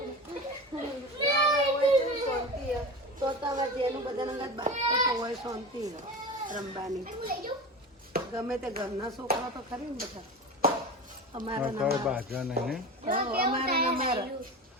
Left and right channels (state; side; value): normal; both; correlation 0.29